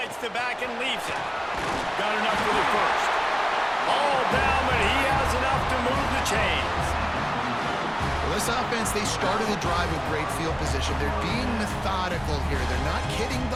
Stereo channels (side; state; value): both; identical; correlation 1.00